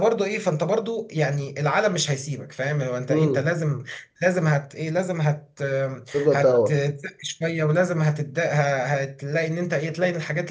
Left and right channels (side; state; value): both; identical; correlation 1.00